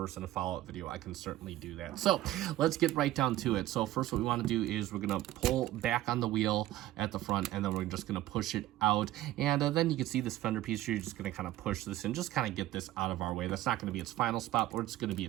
in a follow-up video, I can certainly do that. So let's get right down to it. So first, what we want to do is we're going to pull back on the wheel at the front, and then we're just going to push it out. And then you can see this fender piece here. You're just going to kind of push this in, just kind of get this out of our way. That's not going to be its final spot, but it's going to be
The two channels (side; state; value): left; quieter; 15.1 dB